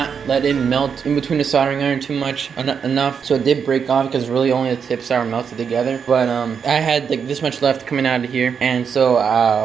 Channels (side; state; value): left; quieter; 6.8 dB